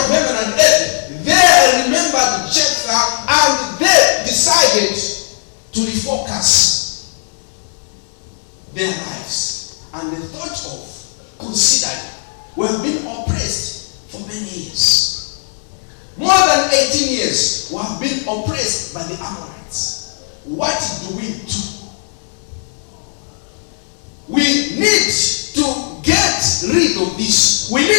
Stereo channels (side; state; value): right; silent; 68 dB below the other